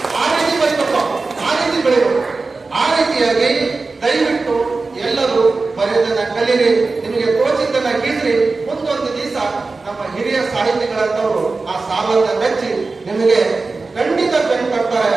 ಆ ರೀತಿ ಬರೀಬೇಕು, ಆ ರೀತಿ ಬೆಳಿಬೇಕು. ಆ ರೀತಿಯಾಗಿ ದಯವಿಟ್ಟು ಎಲ್ಲರೂ ಬರೆಯೋದನ್ನ ಕಲೀರಿ, ನಿಮಗೆ ತೋಚಿದ್ದನ್ನ ಗೀಸ್ರಿ. ಮುಂದೊಂದು ದಿವಸ ನಮ್ಮ ಹಿರಿಯ ಸಾಹಿತಿಗಳಂತವರು ಆ ಸಾಲನ್ನ ಮೆಚ್ಚಿ ನಿಮಗೆ ಖಂಡಿತ ಬೆನ್ನು ಕಟ್ತಾರೆ.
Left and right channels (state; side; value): quieter; left; 3.8 dB